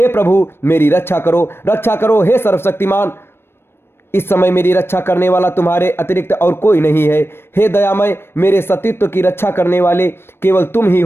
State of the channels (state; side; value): late; right; 0.12 ms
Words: प्रभु, मेरी रक्षा करो हे सर्वशक्तिमान। इस समय मेरी रक्षा करने वाला तुम्हारे अतिरिक्त और कोई नहीं है। हे दयामय, मेरे सतीत्व की रक्षा करने वाले केवल तुम ही